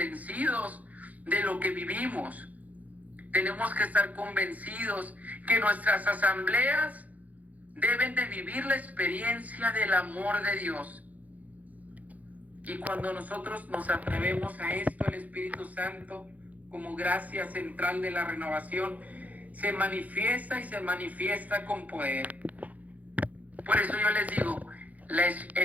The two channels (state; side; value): late; left; 0.076 ms